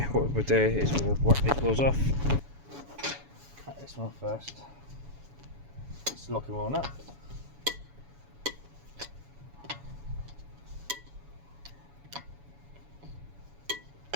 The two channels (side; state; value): left; late; 7.1 ms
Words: what we'll do is we'll whack these wheels off, cut this one first, just lock them on up.